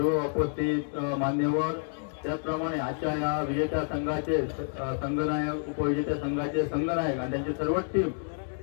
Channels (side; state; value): right; silent; digital silence